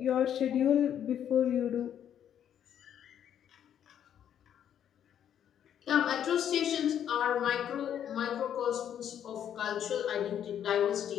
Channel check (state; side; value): quieter; right; 9.6 dB